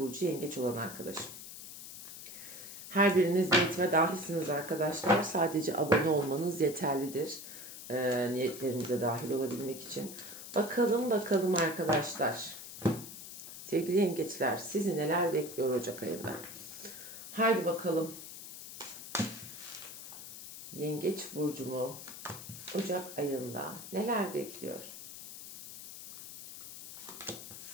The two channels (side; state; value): left; noise; hiss, 12 dB below the sound